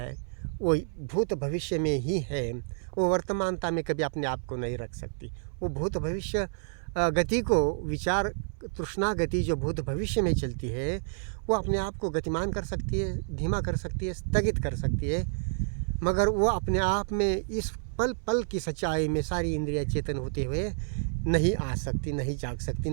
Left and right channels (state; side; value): silent; left; 58 dB below the other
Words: वो भूत भविष्य में ही है. वो वर्तमानता में कभी अपने आप को नहीं रख सकती. वो भूत भविष्य गति को, विचार तृष्णा गति जो भूत भविष्य में चलती है, वो अपने आप को गतिमान कर सकती है, धीमा कर सकती है, स्थगित कर सकती है. मगर वो अपने आप में इस पल पल की सच्चाई में सारी इंद्रियां चेतन होते हुए नहीं आ सकती, नहीं जाग सकती,